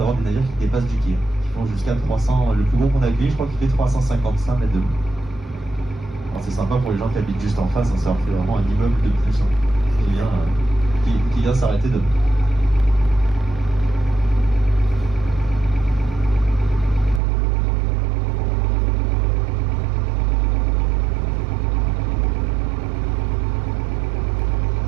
des navires qui dépassent du quai, qui font jusqu'à 300, le plus gros qu'on a accueilli, je crois qu'il fait 355 mètres de long. Alors c'est sympa pour les gens qui habitent juste en face, ça leur fait vraiment un immeuble de plus. Qui vient s'arrêter demain.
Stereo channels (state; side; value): drops out; left; at 17.2 s